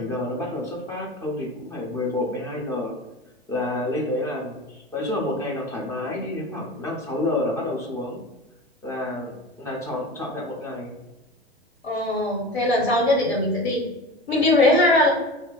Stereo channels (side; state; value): both; normal; correlation 0.32